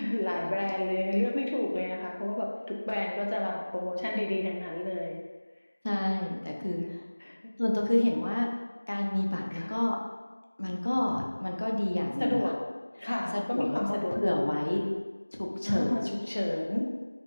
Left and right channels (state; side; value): inverted; both; correlation -1.00